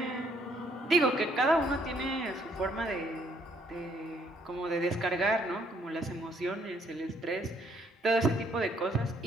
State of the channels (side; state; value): both; normal; correlation 0.67